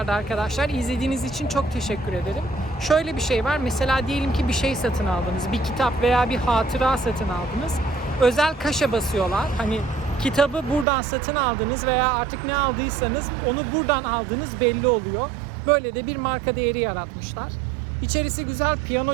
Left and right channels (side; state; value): left; drops out; at 10.9 s